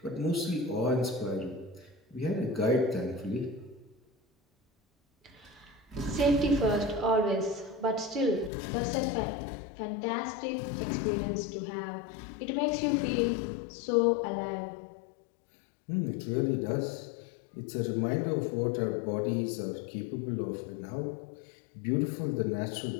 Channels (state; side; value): drops out; right; at 8.5 s